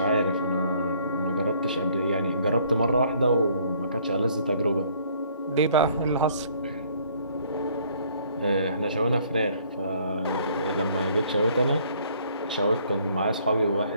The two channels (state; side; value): inverted; both; correlation -0.62